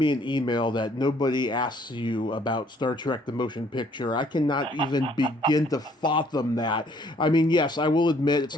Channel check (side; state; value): both; normal; correlation 0.62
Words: in email that nobody asks you about Star Trek the Motion Picture. I cannot even begin to fathom that. I mean, yes, I will admit it's